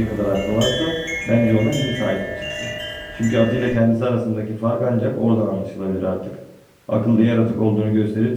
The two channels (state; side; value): identical; both; correlation 1.00